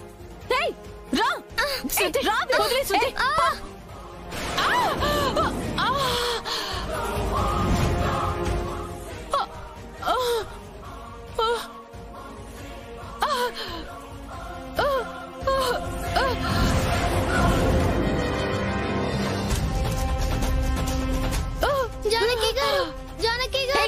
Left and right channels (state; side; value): identical; both; correlation 1.00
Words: రా. జానకి గారు, జానకి